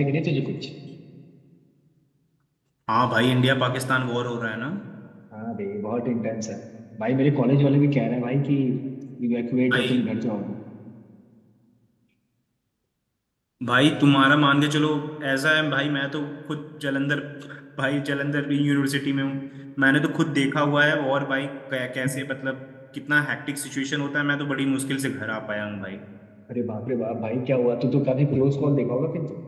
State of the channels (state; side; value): identical; both; correlation 1.00